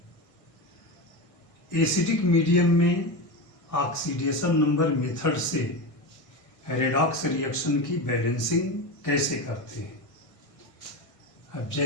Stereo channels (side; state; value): right; late; 1.6 ms